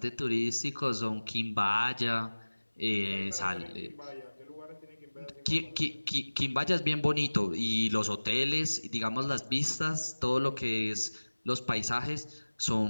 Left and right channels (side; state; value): both; inverted; correlation -1.00